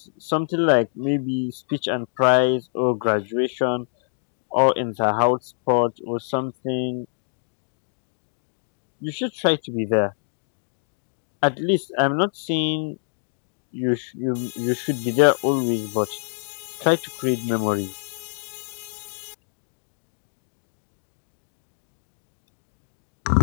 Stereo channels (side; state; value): right; silent; digital silence